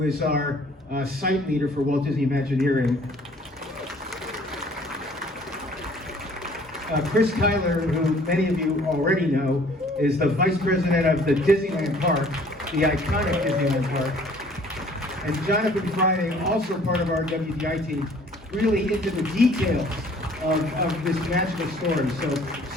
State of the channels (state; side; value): normal; both; correlation 0.55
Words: is our site leader for Walt Disney Imagineering. Chris Tyler, who many of you already know, is the Vice President of the Disneyland Park, the iconic Disneyland Park. And Jonathan Friday, also part of our WDI team, really into the details of this magical story. So